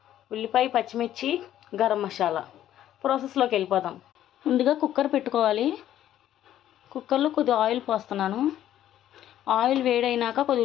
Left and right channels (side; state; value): right; quieter; 11.9 dB